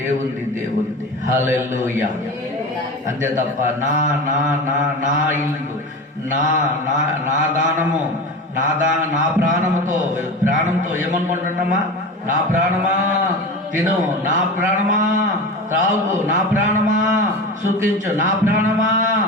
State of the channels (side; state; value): both; normal; correlation 0.28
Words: హల్లెలూయా. అంతే తప్ప నా ఇల్లు, నా దానము, నా ప్రాణంతో ఏమనుకుంటున్నామా? నా ప్రాణమా తిను, నా ప్రాణమా త్రాగు, నా ప్రాణమా సుఖించు, నా ప్రాణమా